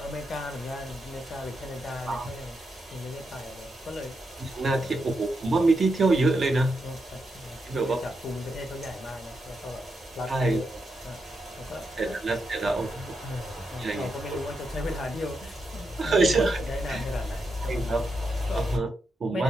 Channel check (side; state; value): both; normal; correlation 0.84